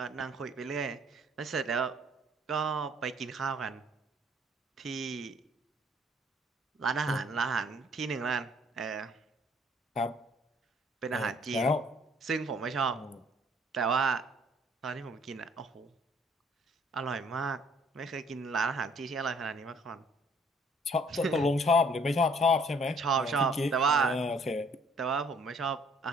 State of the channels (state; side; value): normal; both; correlation 0.60